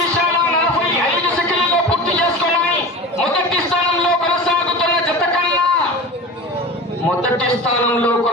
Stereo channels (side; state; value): both; normal; correlation 0.32